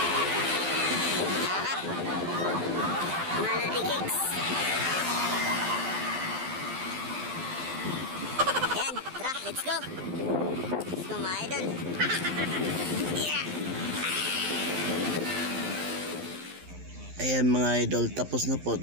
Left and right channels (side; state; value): left; late; 12 ms